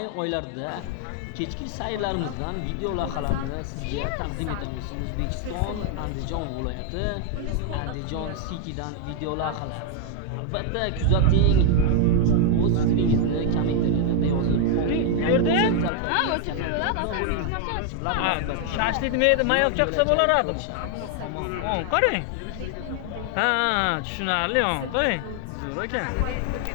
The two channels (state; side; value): different; both; correlation 0.00